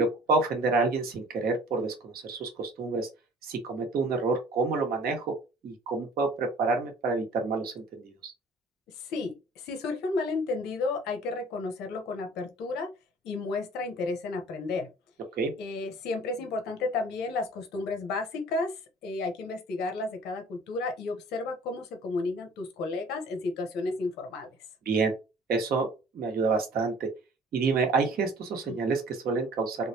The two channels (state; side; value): normal; both; correlation 0.49